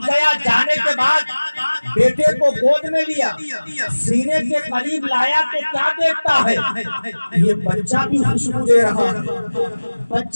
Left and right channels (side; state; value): both; inverted; correlation -1.00